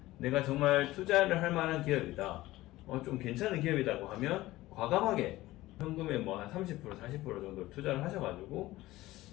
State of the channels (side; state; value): right; quieter; 17.4 dB